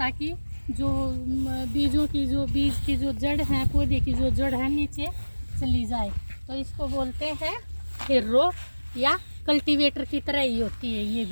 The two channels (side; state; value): both; inverted; correlation -1.00